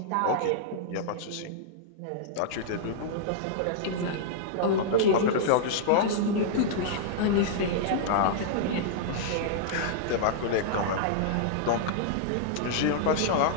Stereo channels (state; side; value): different; both; correlation -0.02